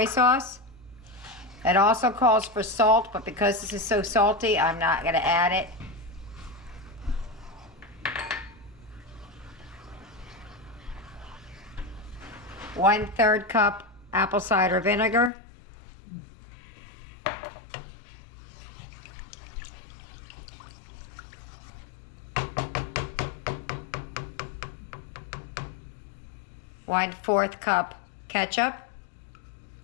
sauce. It also calls for salt, but because this is so salty, I'm not going to add it. One-third cup apple cider vinegar. One-fourth cup ketchup.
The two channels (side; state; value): right; drops out; at 15.3 s